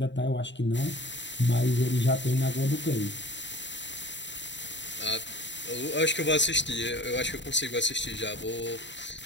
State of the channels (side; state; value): right; late; 0.53 ms